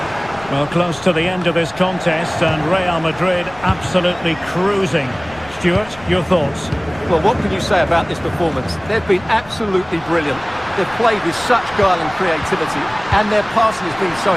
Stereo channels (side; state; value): left; noise; rumble, 21 dB below the sound